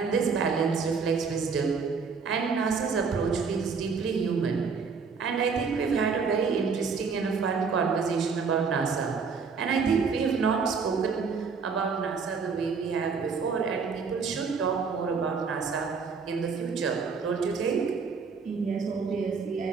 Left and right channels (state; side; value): quieter; left; 5.3 dB